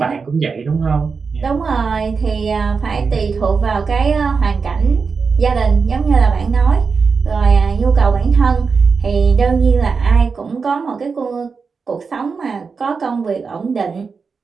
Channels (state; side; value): quieter; left; 5.1 dB